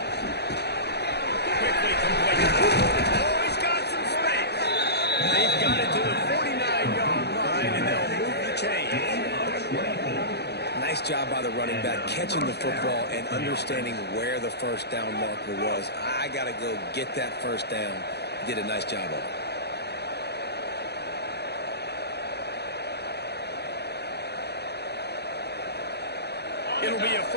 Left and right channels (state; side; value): late; right; 0.48 ms